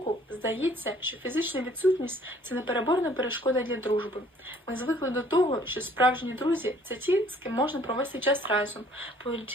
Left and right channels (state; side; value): normal; both; correlation 0.58